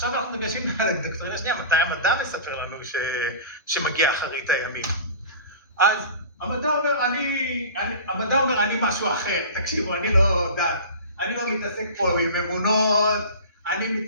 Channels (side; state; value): both; inverted; correlation -0.35